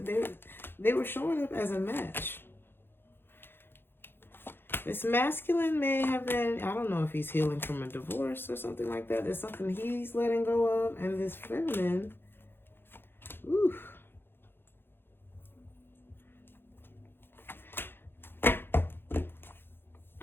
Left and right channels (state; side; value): late; right; 0.10 ms